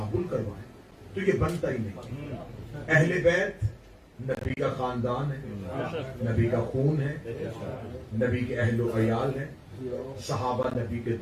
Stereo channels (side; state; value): both; identical; correlation 1.00